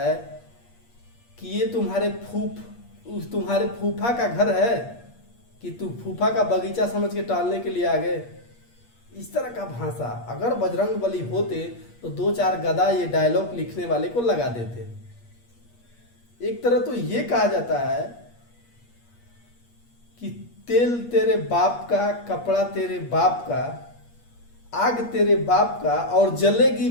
कि ये तुम्हारे फूफा का घर है कि तू फूफा का बगीचा समझ के टहलने के लिए आ गए। इस तरह का भाषा अगर बजरंग बली होते तो 2-4 गदा ये डायलॉग लिखने वाले को लगा देते। एक तरह तो ये कहा जाता है कि तेल तेरे बाप का, कपड़ा तेरे बाप का, आग तेरे बाप का और जलेगी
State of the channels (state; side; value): late; right; 8.5 ms